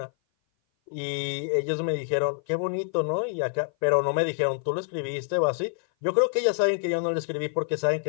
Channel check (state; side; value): silent; right; 57 dB below the other